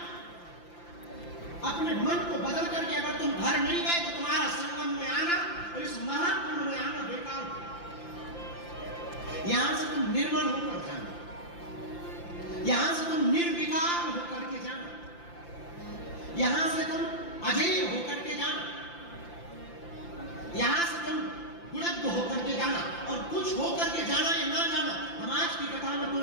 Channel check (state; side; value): late; right; 5.8 ms